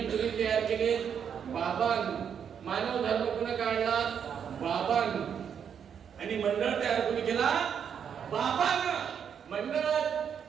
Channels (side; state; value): left; quieter; 7.8 dB